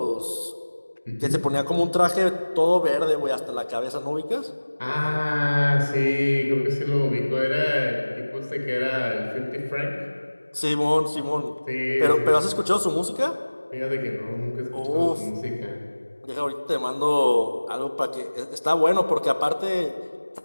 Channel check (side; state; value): both; inverted; correlation -1.00